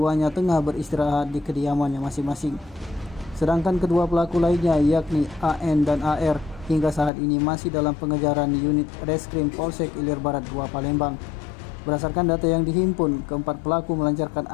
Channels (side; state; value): right; drops out; at 7.1 s